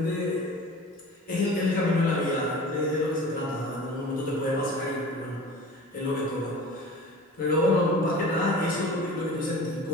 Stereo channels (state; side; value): normal; both; correlation 0.39